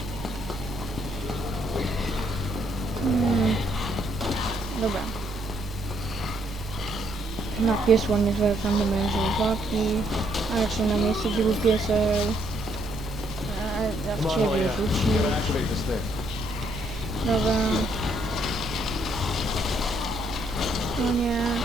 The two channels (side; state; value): both; normal; correlation 0.71